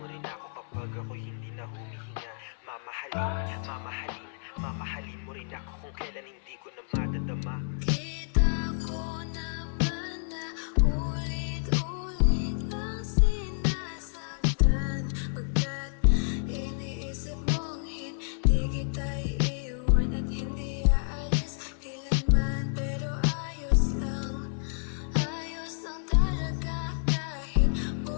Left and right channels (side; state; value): right; silent; 58 dB below the other